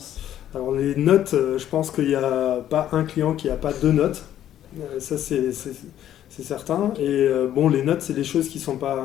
Alors les notes, je pense qu'il n'y a pas un client qui n'a pas 2 notes. Ça c'est certain. Et les notes, c'est des choses qui sont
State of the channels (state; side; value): quieter; right; 11.4 dB